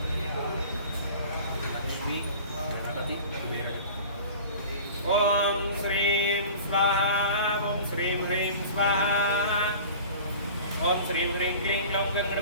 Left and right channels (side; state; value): both; inverted; correlation -0.41